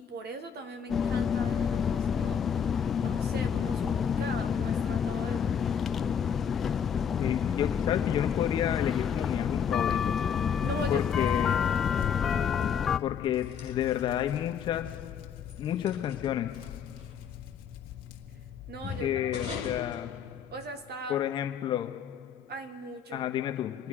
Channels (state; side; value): quieter; right; 7.6 dB